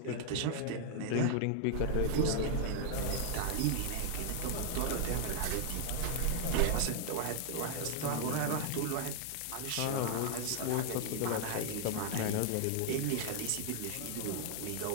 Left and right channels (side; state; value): both; different; correlation -0.01